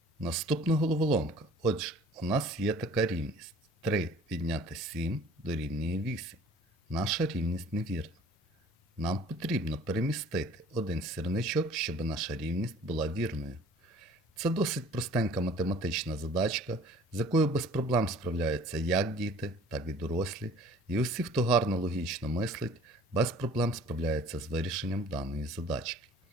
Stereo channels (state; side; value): normal; both; correlation 0.50